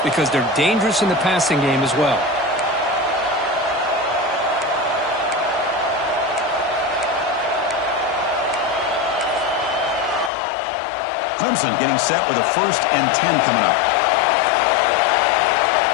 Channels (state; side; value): drops out; right; at 10.3 s